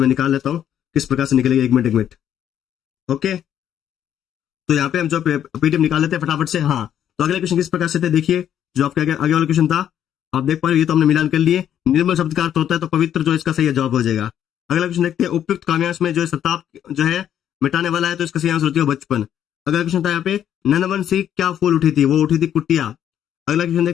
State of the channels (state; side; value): quieter; right; 10.1 dB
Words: निकाल लेता हूँ किस प्रकार से निकलेगी, एक मिनट, ओके। तो यहाँ पे हम जो पीडीएफ निकाल लेते हैं फटाफट से, हाँ। तो अगले क्वेश्चन किस प्रकार से थे, देखिए, जो आपके आगे वाला क्वेश्चन था आप देख पा रहे हो, ये तो हमने मिलान कर लिए, निर्मल शब्द का अर्थ होता है, तो पवित्र जो इसका सही जवाब हो जाएगा। अगला क्वेश्चन देखते हैं, उपयुक्त काव्यांश में जो है सताप जो है मिटाने वाला है, तो इसका सही आंसर होती है बचपन। अगला क्वेश्चन था यहाँ पे नंदवन से क्या फूल उठी थी, वो उठी थी कुटिया। अगला क्वेश्चन